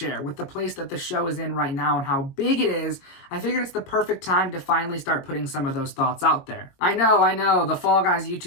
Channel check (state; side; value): late; right; 22 ms